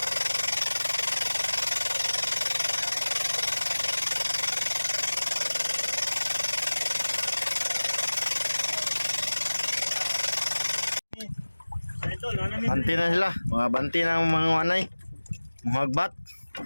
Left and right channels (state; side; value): inverted; both; correlation -1.00